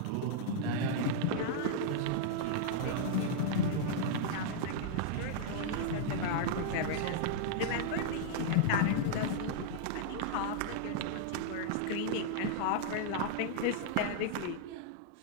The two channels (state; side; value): different; both; correlation -0.01